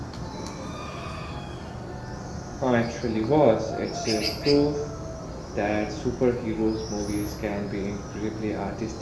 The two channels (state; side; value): identical; both; correlation 1.00